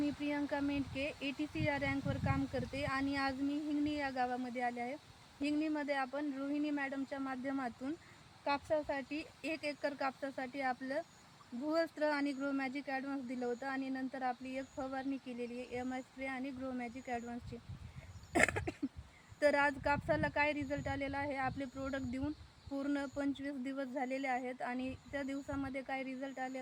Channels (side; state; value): both; identical; correlation 1.00